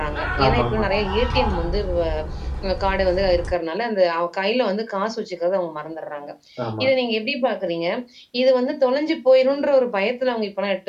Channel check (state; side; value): identical; both; correlation 1.00